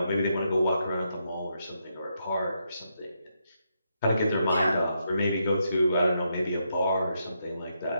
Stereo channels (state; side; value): inverted; both; correlation -0.80